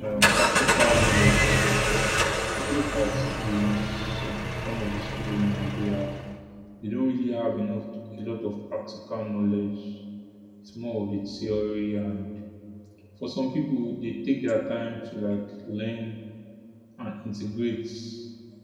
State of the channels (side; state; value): both; identical; correlation 1.00